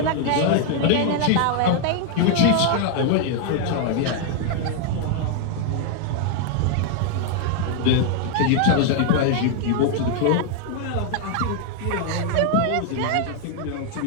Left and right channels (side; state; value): both; different; correlation 0.00